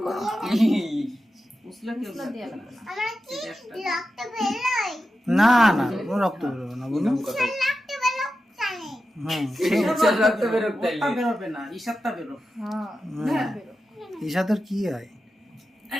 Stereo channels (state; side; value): normal; both; correlation 0.91